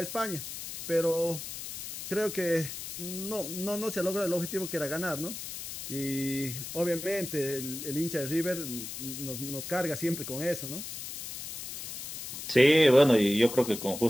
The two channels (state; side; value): noise; left; hiss, 8 dB below the sound